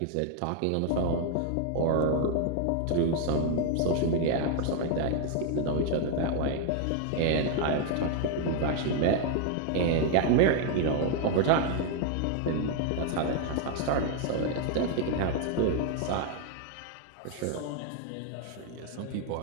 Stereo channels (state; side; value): different; both; correlation 0.00